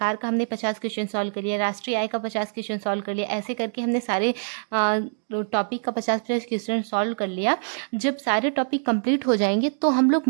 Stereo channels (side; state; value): left; silent; digital silence